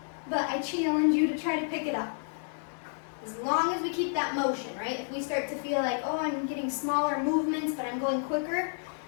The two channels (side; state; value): right; silent; 58 dB below the other